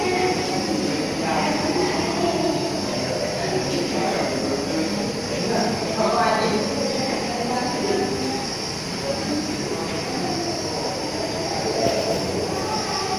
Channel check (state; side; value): identical; both; correlation 1.00